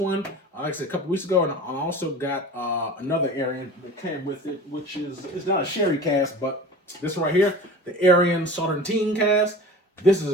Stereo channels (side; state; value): both; normal; correlation 0.38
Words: like I said, a couple weeks ago, and I also got another Arian that came with it, which it's not a sherry cask, but this one right here, the Arian Sauterne cask. This